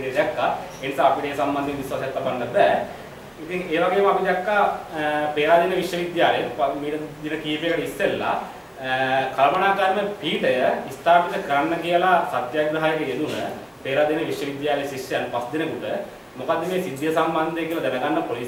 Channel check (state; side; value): identical; both; correlation 1.00